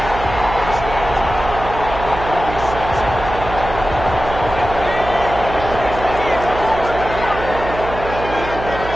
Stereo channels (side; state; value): right; noise; hum, 9 dB below the sound